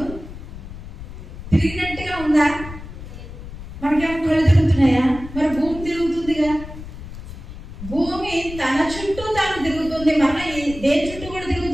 తిరిగినట్టుగా ఉందా? మనకేమో కళ్ళు తిరుగుతున్నాయా? మరి భూమి తిరుగుతుందిగా. భూమి తన చుట్టూ తాను తిరుగుతుంది. మన దేని చుట్టూ కూడా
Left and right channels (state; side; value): noise; left; rumble, 12 dB below the sound